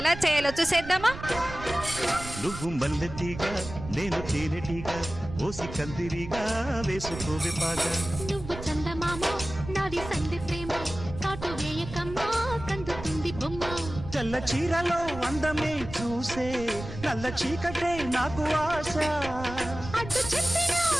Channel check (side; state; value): right; noise; rumble, 11 dB below the sound